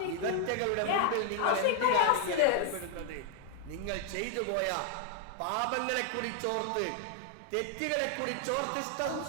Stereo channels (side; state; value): both; different; correlation 0.00